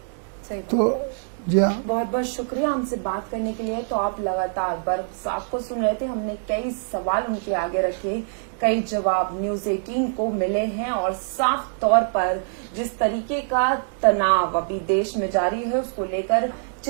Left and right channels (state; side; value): silent; left; digital silence